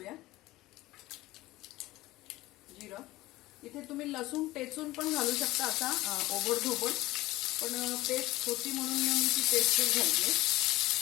जिरं। इथे तुम्ही लसूण टेचून पण घालू शकता, असा ओबडधोबड, पण पेस्ट होती म्हणून मी ती पेस्ट घालते।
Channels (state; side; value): quieter; right; 18.2 dB